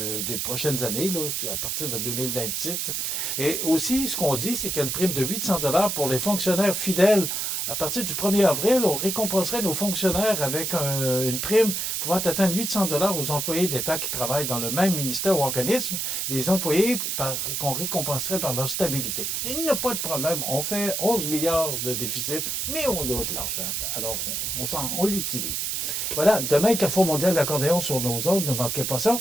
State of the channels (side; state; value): right; noise; hiss, 1 dB below the sound